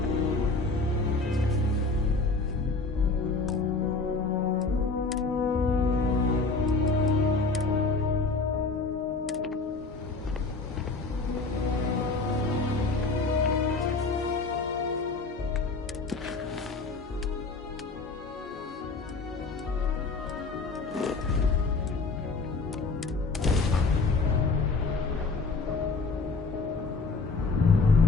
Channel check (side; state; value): right; quieter; 3.9 dB